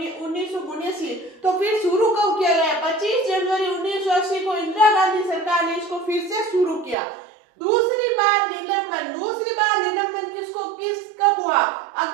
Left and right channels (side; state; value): left; drops out; at 7.0 s